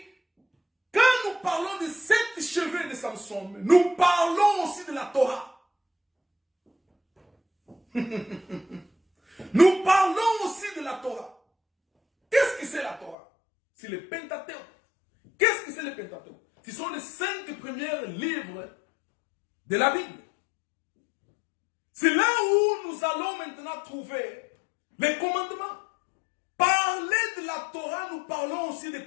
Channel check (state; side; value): drops out; right; at 13.2 s